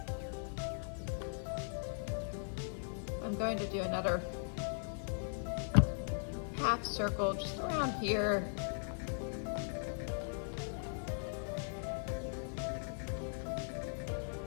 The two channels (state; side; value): silent; right; 52 dB below the other